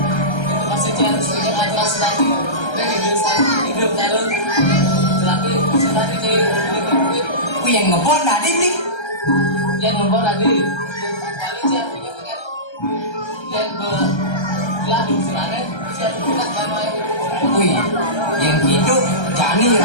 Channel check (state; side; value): late; right; 1.3 ms